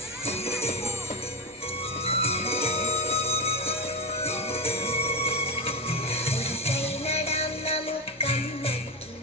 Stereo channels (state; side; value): normal; both; correlation 0.16